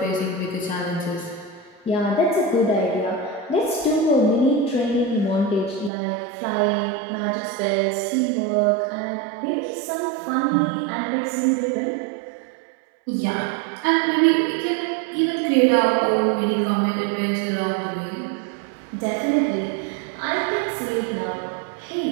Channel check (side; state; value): left; drops out; at 5.9 s